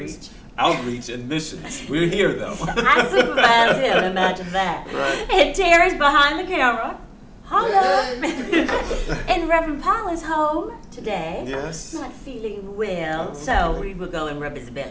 Outreach and Missions. We're here though. I supervise him, imagine that. Right. And Terry's behind the camera. Hello. And Reverend Powell is home today. Yes. Not feeling well, so we will go and rub his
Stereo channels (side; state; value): both; identical; correlation 1.00